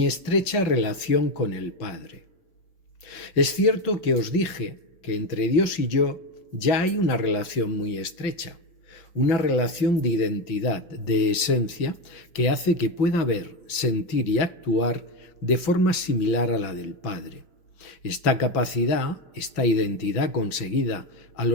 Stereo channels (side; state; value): right; late; 5.6 ms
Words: estrecha relación con el Padre. Es cierto que os dije que entre Dios y yo ya hay una relación muy estrecha, una relación de identidad, de esencia, que hace que pueda ver, sentir y actuar de forma similar a la del Padre. Esta capacidad, esta identidad conseguida a